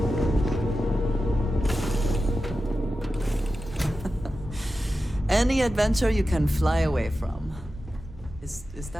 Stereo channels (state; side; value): normal; both; correlation 0.92